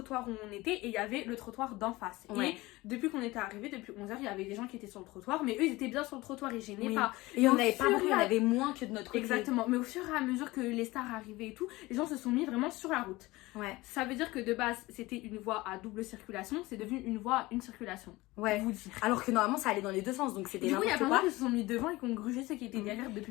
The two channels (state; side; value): quieter; right; 20.2 dB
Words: où on était et il y avait le trottoir d'en face. Ouais. Et depuis qu'on était arrivé, depuis 11h, il y avait des gens qui étaient sur le trottoir, mais eux ils étaient bien sur le trottoir, ils gênaient Oui. pas. Et on Au n'avait pas fur beaucoup, et il y en à- avait moins que de notre côté. Exactement, mais au fur et à mesure que les stars arrivaient et tout, les gens se sont mis vraiment sur la route. Ouais. Ça veut dire que de base c'était une voie à double circulation, c'est devenu une voie à une circulation. Ouais. Vous dire. Alors que normalement, ça allait dans les deux sens, donc c'était Du coup, il y a n'importe plein de quoi. gens qui se sont mis devant et qui ont grugé ceux qui étaient derrière depuis